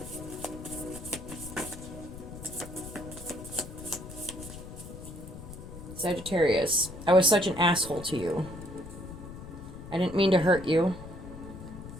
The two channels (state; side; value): noise; left; rumble, 12 dB below the sound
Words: Sagittarius. I was such an asshole to you. I didn't mean to hurt you.